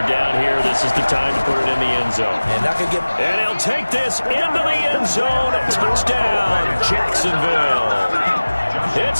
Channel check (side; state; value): both; inverted; correlation -1.00